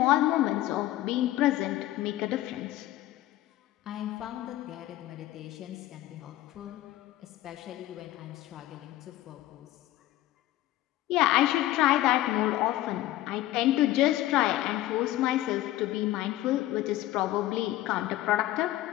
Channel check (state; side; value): quieter; right; 15.3 dB